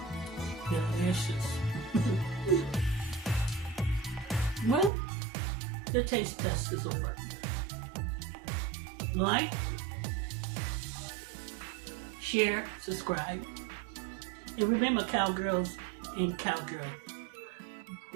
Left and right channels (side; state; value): left; drops out; at 4.9 s